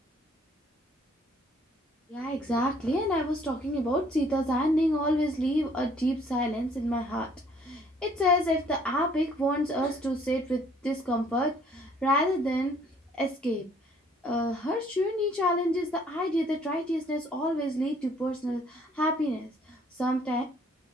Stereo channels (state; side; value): normal; both; correlation 0.60